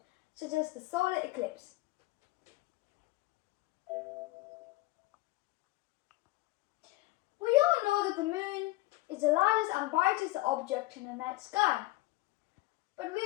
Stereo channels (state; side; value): quieter; right; 19.0 dB